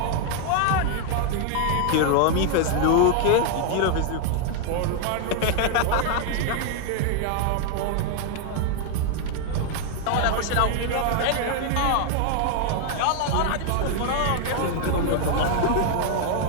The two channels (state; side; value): different; both; correlation 0.00